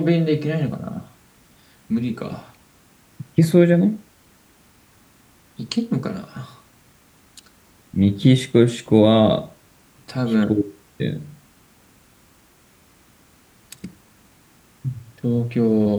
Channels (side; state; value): both; identical; correlation 1.00